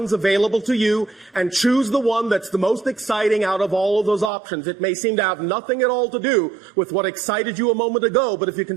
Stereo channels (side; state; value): left; drops out; at 4.3 s